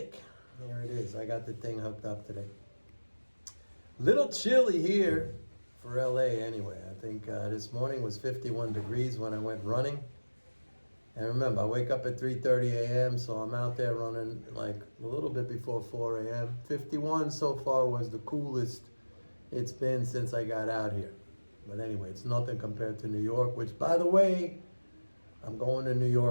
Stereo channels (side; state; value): both; inverted; correlation -1.00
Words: Here it is. I got the thing hooked up today. Little chilly here for LA anyway. I think this morning was 51 degrees when I went running. And remember, I wake up at 3:30 a.m., so I'm out there running like a little bit before 4 a.m. 51 so far was the coolest it's been since I got out here. But anyway, it's nothing compared to New York, which, by the way, I'm going to New